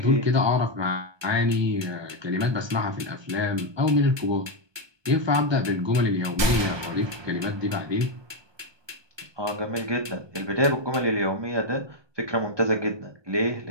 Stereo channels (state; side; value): late; left; 1.2 ms